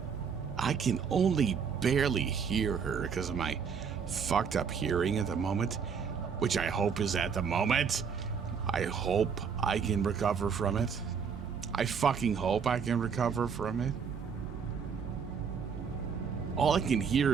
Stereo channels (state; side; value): quieter; left; 6.4 dB